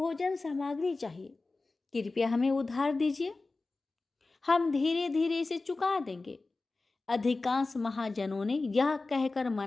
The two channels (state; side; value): quieter; right; 3.5 dB